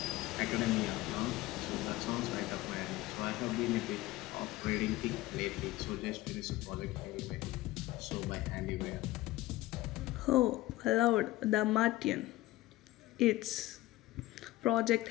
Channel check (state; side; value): quieter; right; 17.5 dB